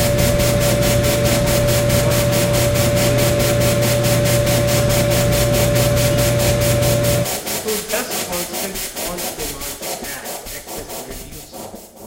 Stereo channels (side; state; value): both; identical; correlation 1.00